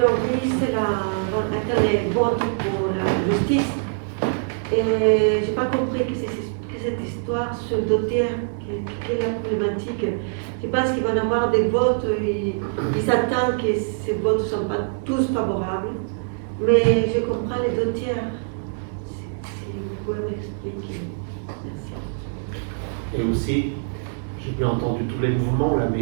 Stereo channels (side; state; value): left; silent; digital silence